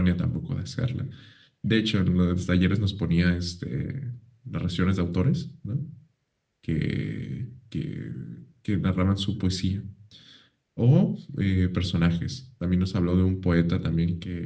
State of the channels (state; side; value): identical; both; correlation 1.00